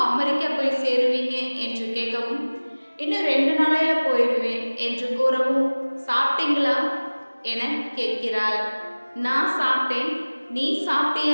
அமெரிக்கா போய் சேருவீங்க என்று கேட்கவும், இன்னும் 2 நாளையில போயிடுவேன் என்று கூறவும், சாப்பிட்டீங்களா என கேட்கிறாள். நான் சாப்பிட்டேன், நீ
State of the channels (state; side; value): inverted; both; correlation -1.00